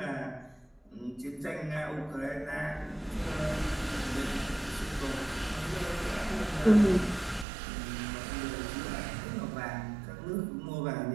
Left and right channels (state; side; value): drops out; left; at 7.5 s